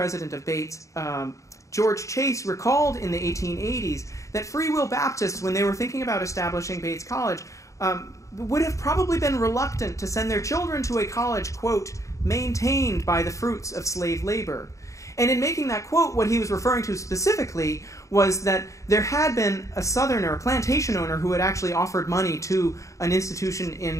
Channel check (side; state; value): right; late; 0.15 ms